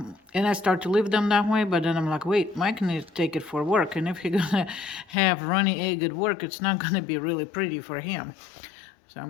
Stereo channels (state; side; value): drops out; right; at 5.2 s